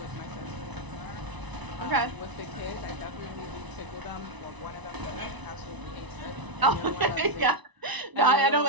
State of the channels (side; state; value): left; late; 1.0 ms